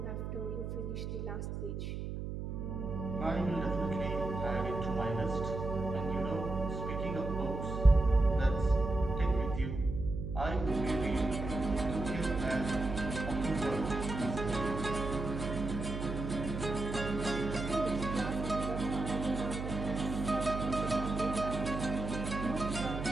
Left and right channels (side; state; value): right; noise; hum, 5 dB below the sound